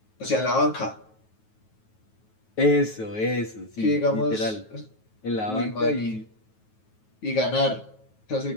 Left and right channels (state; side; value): late; right; 9.3 ms